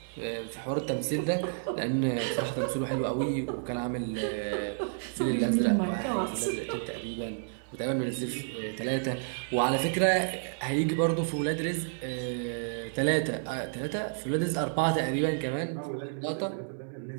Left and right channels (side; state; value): left; silent; 57 dB below the other